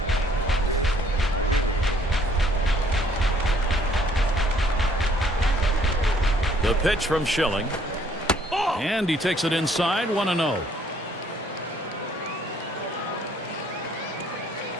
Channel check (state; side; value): normal; both; correlation 0.63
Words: The pitch from Schilling. And he takes it inside, 1-0.